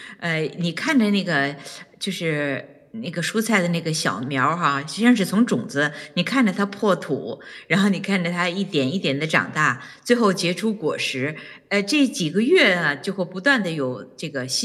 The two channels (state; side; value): identical; both; correlation 1.00